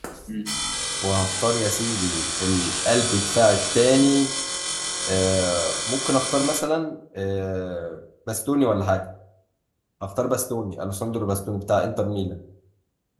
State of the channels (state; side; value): identical; both; correlation 1.00